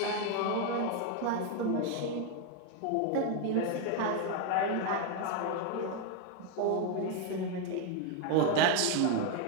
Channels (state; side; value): different; both; correlation 0.01